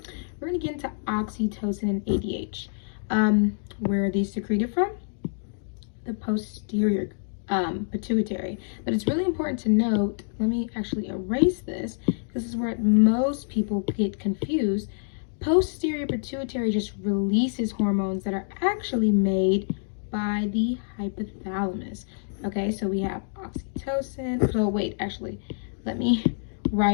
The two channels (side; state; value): right; silent; digital silence